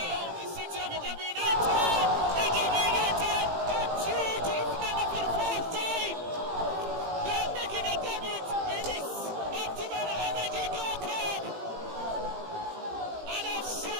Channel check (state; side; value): late; left; 18 ms